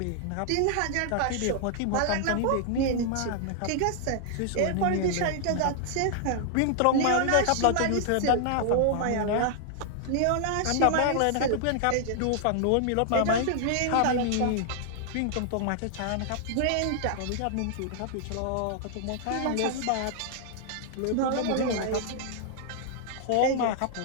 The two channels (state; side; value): different; both; correlation -0.01